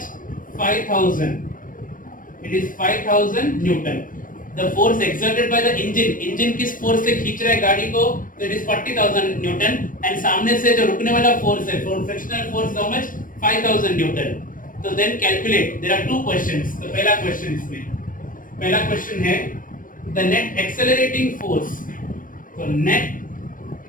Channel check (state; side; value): late; right; 0.40 ms